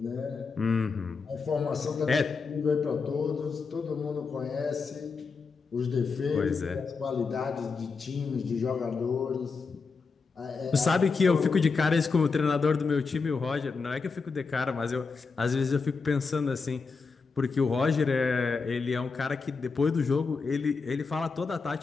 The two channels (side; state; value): right; quieter; 4.8 dB